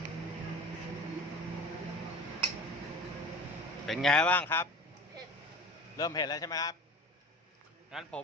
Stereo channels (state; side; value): normal; both; correlation 0.37